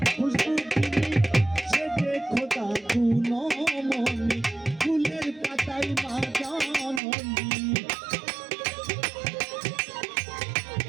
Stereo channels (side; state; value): left; drops out; at 7.0 s